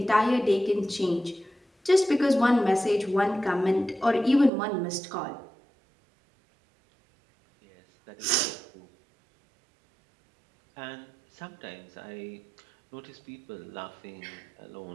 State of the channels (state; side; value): drops out; left; at 4.5 s